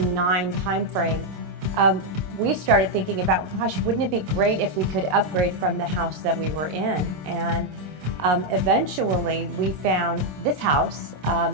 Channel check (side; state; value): left; late; 26 ms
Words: timeframe, we started thinking about, gosh, wouldn't it be great if we could upgrade from the house that we were in? And eventually we found this house